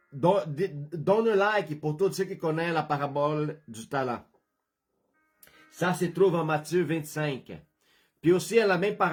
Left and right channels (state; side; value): identical; both; correlation 1.00